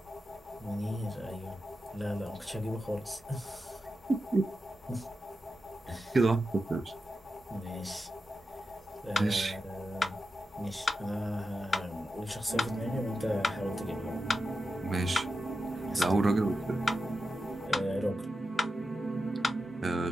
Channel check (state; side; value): normal; both; correlation 0.90